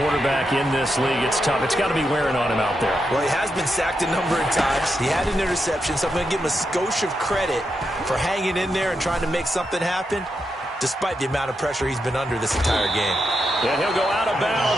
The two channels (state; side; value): normal; both; correlation 0.85